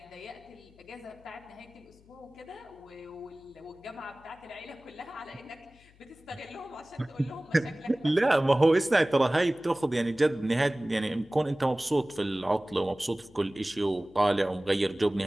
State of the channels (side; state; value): left; noise; hum, 27 dB below the sound